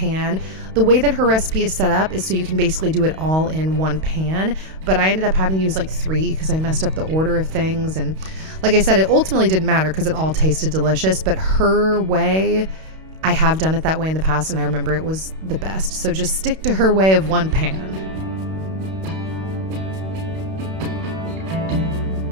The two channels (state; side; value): late; left; 32 ms